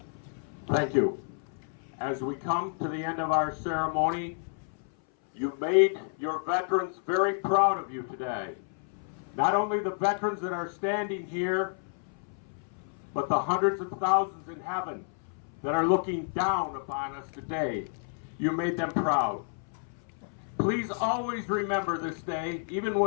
Thank you. As we come to the end of our ceremony, you've made your veterans very proud of you today. Not only the veterans that are standing here, but the hundreds of thousands in heaven that are looking down upon us today. You made them proud. Please always remember this day, even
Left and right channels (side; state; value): right; silent; 58 dB below the other